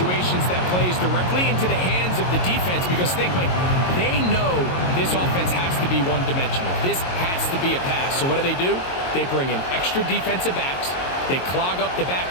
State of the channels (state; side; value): late; right; 22 ms